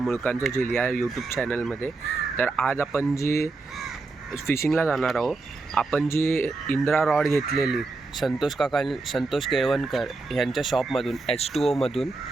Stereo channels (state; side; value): quieter; left; 3.6 dB